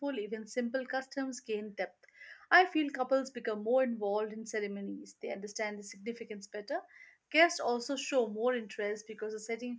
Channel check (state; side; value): identical; both; correlation 1.00